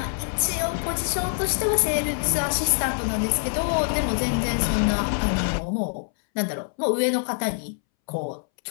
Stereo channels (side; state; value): right; silent; 62 dB below the other